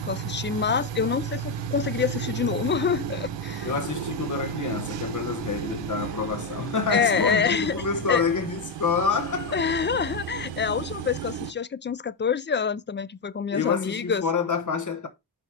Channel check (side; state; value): right; quieter; 3.8 dB